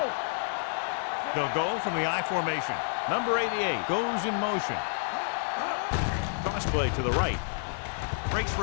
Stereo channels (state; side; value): silent; right; 58 dB below the other